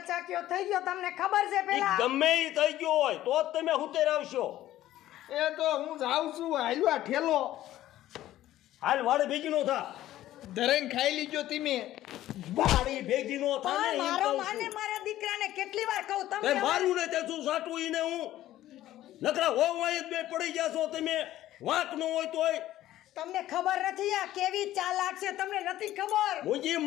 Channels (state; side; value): quieter; right; 14.0 dB